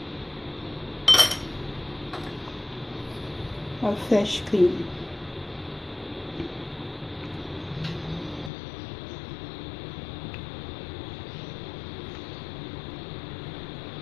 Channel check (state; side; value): drops out; right; at 8.5 s